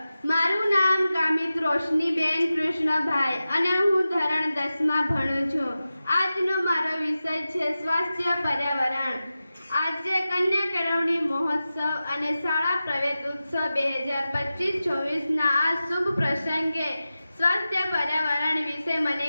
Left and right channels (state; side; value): inverted; both; correlation -0.94